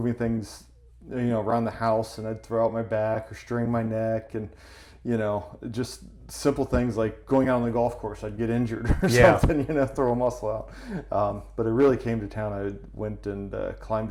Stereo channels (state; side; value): identical; both; correlation 1.00